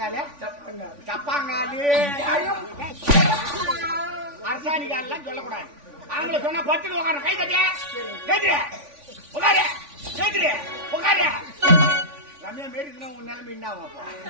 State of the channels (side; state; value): left; late; 3.5 ms